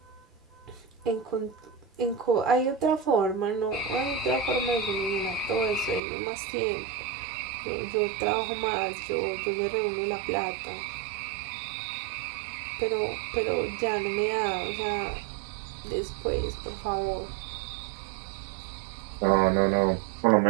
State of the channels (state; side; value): drops out; left; at 6.0 s